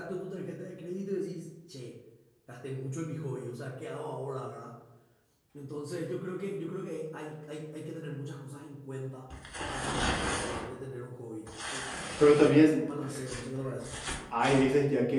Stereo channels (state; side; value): identical; both; correlation 1.00